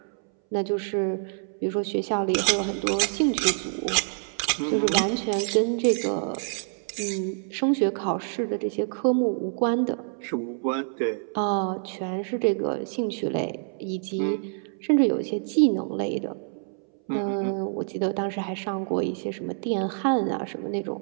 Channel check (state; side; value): silent; left; 60 dB below the other